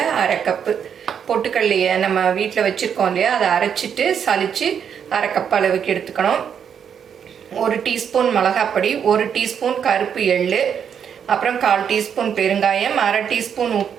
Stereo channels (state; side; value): quieter; left; 7.9 dB